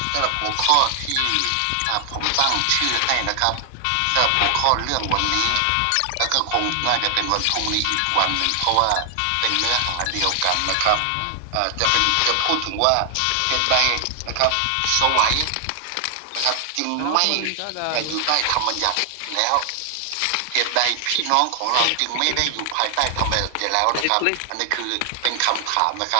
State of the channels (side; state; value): both; different; correlation 0.00